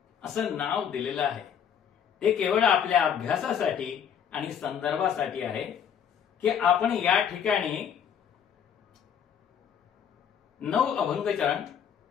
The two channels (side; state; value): right; quieter; 8.3 dB